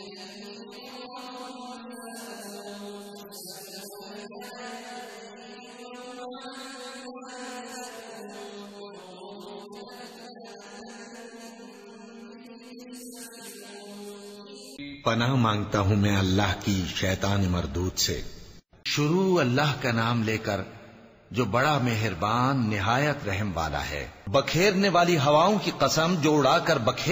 هم في غمرة ساهون يسألون أيان يوم الدين يوم هم على النار يفتنون ذوقوا فتنتكم هذا الذي كنتم به تستعجلون पनाह मांगता हूँ मैं अल्लाह की शैतान मरदूद से। शुरू अल्लाह का नाम लेकर जो बड़ा मेहरबान निहायत रहम वाला है। बखेरने वाली हवाओं की कसम जो उड़ाकर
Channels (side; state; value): both; identical; correlation 1.00